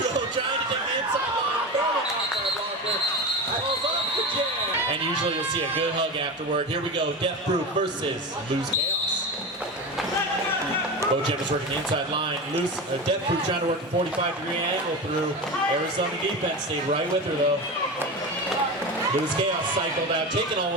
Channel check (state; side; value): normal; both; correlation 0.24